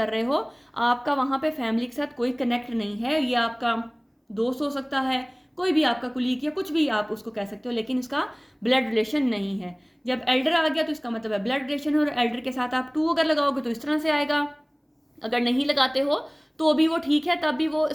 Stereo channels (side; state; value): both; identical; correlation 1.00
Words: रहे हो, आपका वहाँ पे फैमिली के साथ कोई कनेक्ट नहीं है। ये आपका दोस्त हो सकता है, कोई भी आपका कुलीग या कुछ भी आप उसको कह सकते हो, लेकिन इसका ब्लड रिलेशन नहीं है। जब एल्डर आ गया तो इसका मतलब है ब्लड रिलेशन है, और एल्डर के साथ आप 2 अगर लगाओगे तो इस तरह से आएगा। अगर नहीं लगाते हो तो भी वो ठीक है, तब भी वो